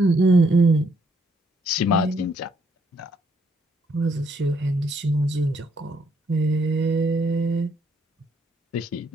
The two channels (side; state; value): both; normal; correlation 0.71